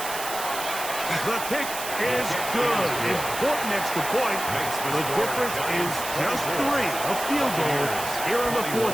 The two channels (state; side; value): noise; right; hiss, 7 dB below the sound